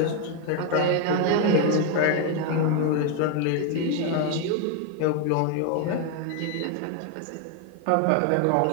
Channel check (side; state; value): both; different; correlation 0.01